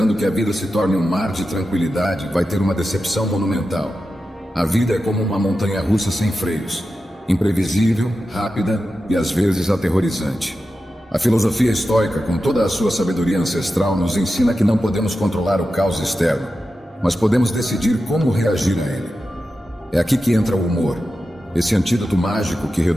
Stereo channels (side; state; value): both; normal; correlation 0.91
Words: que a vida se torne um mar de tranquilidade, vai ter uma decepção monumental. A vida é como uma montanha-russa sem freios, imprevisível, rápida e às vezes aterrorizante. A filosofia estoica, com toda a sua sabedoria ancestral, nos ensina que não podemos controlar o caos externo, mas podemos decidir como reagir a ele. É aqui que entra o humor, esse antídoto mágico que